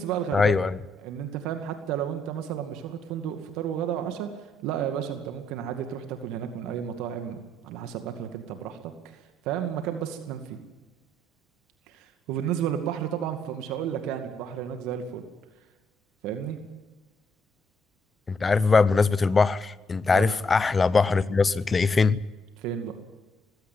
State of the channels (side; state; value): both; normal; correlation 0.75